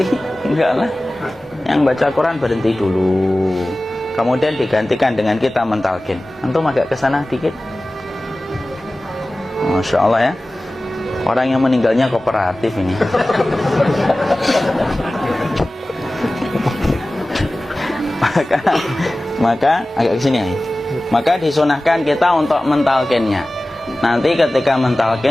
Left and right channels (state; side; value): normal; both; correlation 0.97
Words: Enggak lah. Yang baca Quran berhenti dulu. Kemudian digantikan dengan kita mentalkin. Antum agak ke sana dikit. Masya Allah ya. Orang yang meninggalnya kooperatif ini. maka agak ke sini ya. Maka disunahkan kita untuk mentalkinnya. Nanti ketika